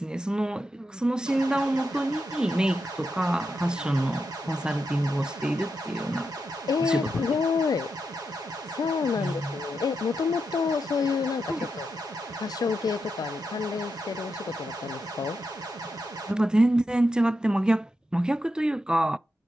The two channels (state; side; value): normal; both; correlation 0.86